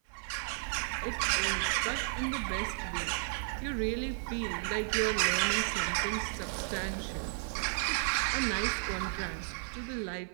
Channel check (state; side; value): silent; left; 55 dB below the other